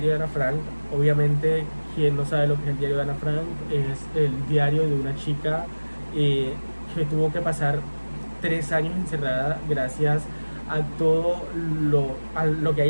de Ana Frank, obviamente, quien no sabe lo que es el diario de Ana Frank, es el diario de una chica que tuvo que pasar 3 años encerrada gracias a todo lo que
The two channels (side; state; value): both; inverted; correlation -1.00